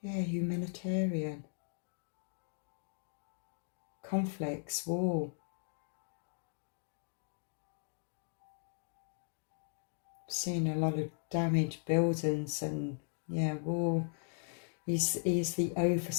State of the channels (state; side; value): silent; right; digital silence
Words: Yeah, humanitarian. Conflicts, war. Seen a lot of damaged buildings and war. He's the